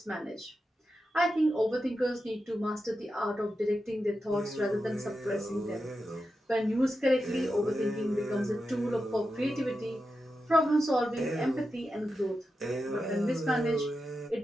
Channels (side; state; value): both; normal; correlation 0.89